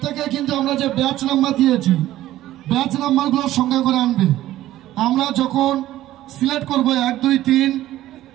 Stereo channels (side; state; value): left; quieter; 14.4 dB